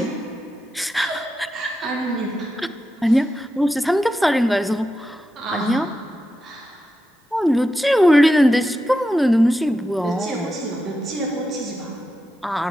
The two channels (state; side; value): normal; both; correlation 0.89